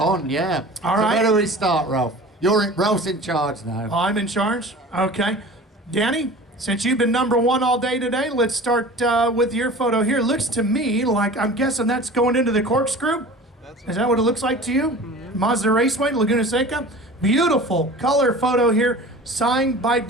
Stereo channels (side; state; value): both; normal; correlation 0.39